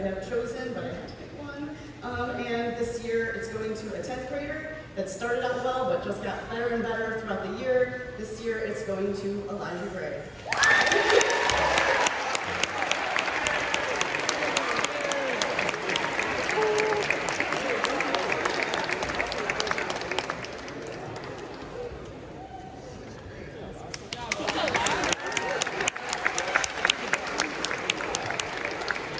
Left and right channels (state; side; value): identical; both; correlation 1.00